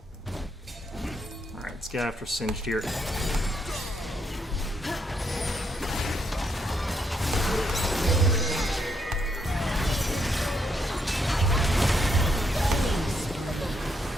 Alright, let's get after Singed here.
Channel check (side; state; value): both; normal; correlation 0.76